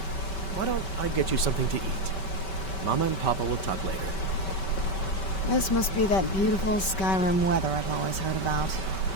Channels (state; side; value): late; right; 5.2 ms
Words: Why don't I get you something to eat? Mama and Papa will talk later. This must be that beautiful Skyrim weather I've always heard about.